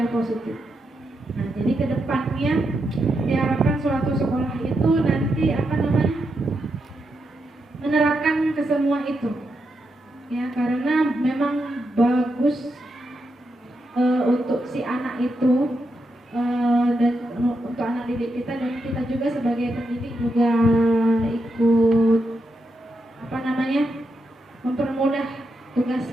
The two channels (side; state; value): both; normal; correlation 0.84